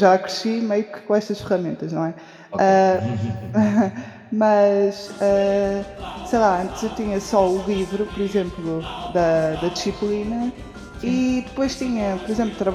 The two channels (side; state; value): both; identical; correlation 1.00